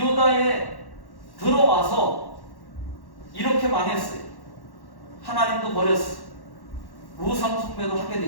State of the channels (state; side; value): late; right; 1.1 ms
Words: 들어와서 이렇게 망했어요. 하나님도 버렸어요. 우상숭배도 하게